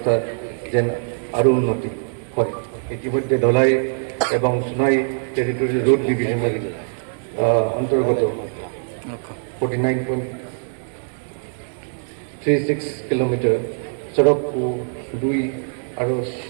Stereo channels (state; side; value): silent; left; digital silence